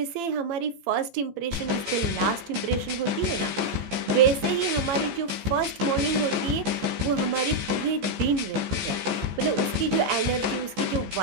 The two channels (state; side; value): late; left; 15 ms